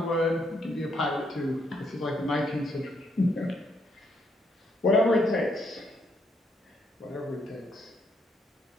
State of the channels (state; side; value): normal; both; correlation 0.74